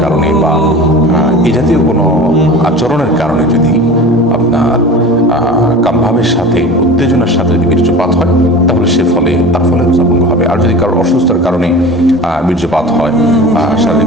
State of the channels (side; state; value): both; normal; correlation 0.36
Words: কারণে বা এই জাতীয় কোনো আচরণের কারণে যদি আপনার কামভাবের সাথে উত্তেজনার সাথে যদি বীর্যপাত হয়, তাহলে তার ফলে রোজা ভঙ্গ হবে। আর যদি কারোর অসুস্থতার কারণে বীর্যপাত হয়, শারীরিক